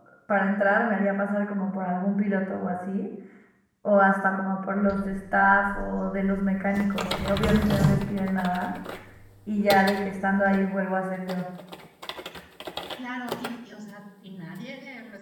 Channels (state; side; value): identical; both; correlation 1.00